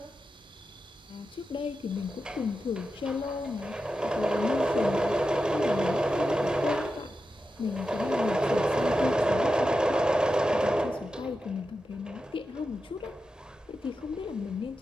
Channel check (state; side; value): normal; both; correlation 0.90